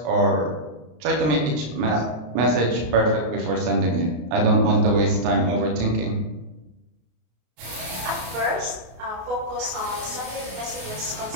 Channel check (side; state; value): left; late; 33 ms